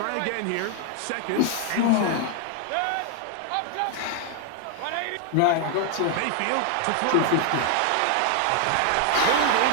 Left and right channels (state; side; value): different; both; correlation 0.00